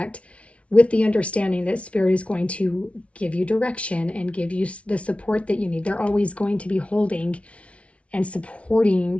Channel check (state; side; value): late; right; 0.062 ms